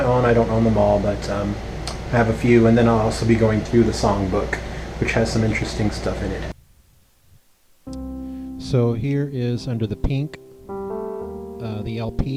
own. I don't own them all, but I have a few, and then I'll also be going through the songbook, which has some interesting stuff in it. So here is Under the Pink, the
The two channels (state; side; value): identical; both; correlation 1.00